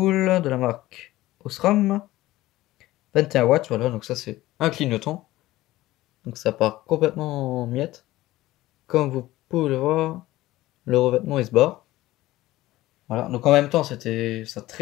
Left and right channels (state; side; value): quieter; right; 16.8 dB